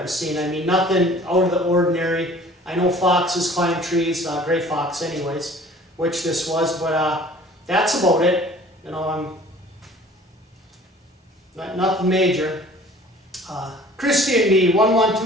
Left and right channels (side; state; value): both; normal; correlation 0.49